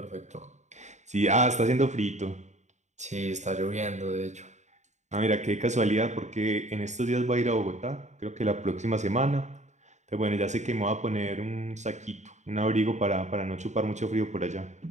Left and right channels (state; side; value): late; left; 0.34 ms